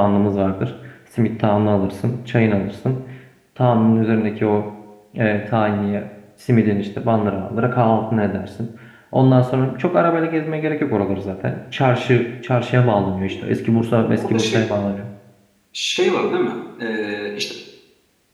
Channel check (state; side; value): identical; both; correlation 1.00